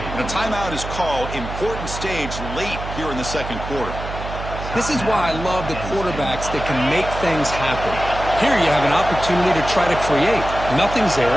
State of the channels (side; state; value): right; noise; hum, 8 dB below the sound